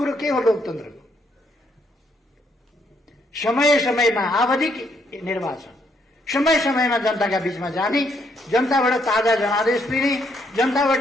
के हो लोकतन्त्रको? समय समयमा आवधिक निर्वाचन, समय समयमा जनताका बीचमा जाने, जनताबाट ताजा जनादेश लिने, जनताबाट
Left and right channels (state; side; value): normal; both; correlation 0.73